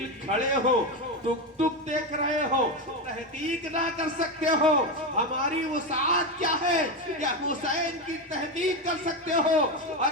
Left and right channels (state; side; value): normal; both; correlation 0.13